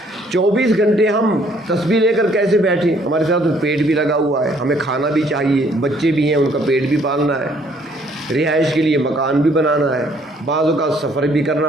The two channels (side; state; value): both; normal; correlation 0.63